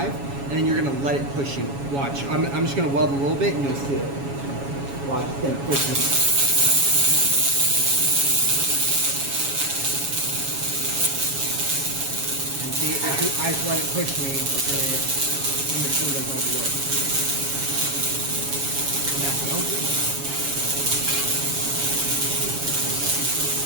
and then you're going to let it push you. Watch. I'm just going to weld a little bit, and you'll see it. Watch. It's going to push me. And see, if I just let it push me, the machine does all the work. And that's no good.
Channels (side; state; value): left; late; 7.2 ms